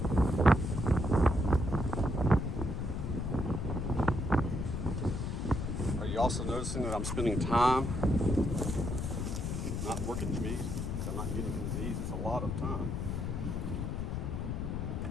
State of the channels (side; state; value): left; noise; rumble, 2 dB below the sound